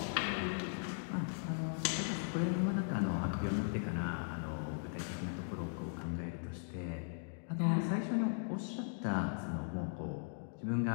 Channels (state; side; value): silent; right; digital silence